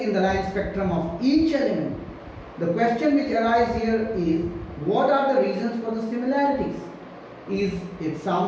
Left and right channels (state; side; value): identical; both; correlation 1.00